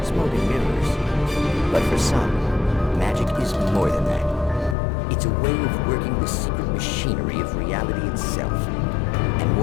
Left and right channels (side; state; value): right; drops out; at 4.8 s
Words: smoking mirrors. But for some, magic is more than that. It's a way of working the secret machinery of reality itself. And